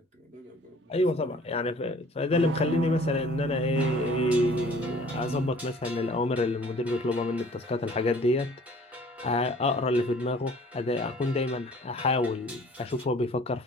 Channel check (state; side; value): normal; both; correlation 0.52